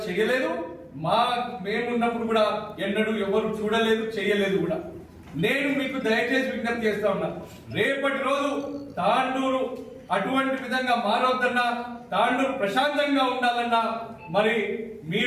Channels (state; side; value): identical; both; correlation 1.00